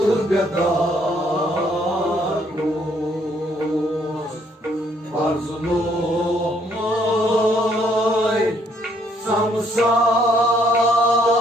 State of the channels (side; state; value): both; normal; correlation 0.67